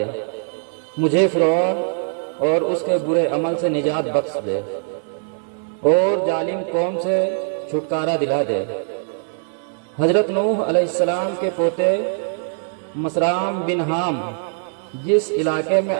مجھے فرعون اور اس کے برے عمل سے نجات بخش دے اور ظالم قوم سے چھٹکارا دلا دے۔ حضرت نوح علیہ السلام کے پوتے مسرام بن حام جس علاقے میں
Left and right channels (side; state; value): left; silent; digital silence